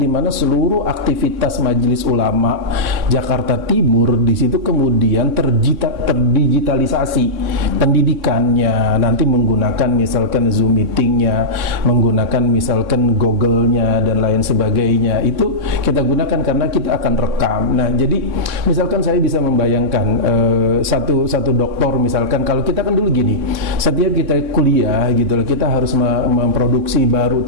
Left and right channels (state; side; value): late; left; 3.6 ms